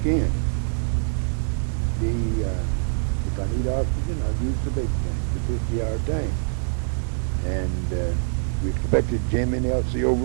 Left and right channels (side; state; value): left; silent; digital silence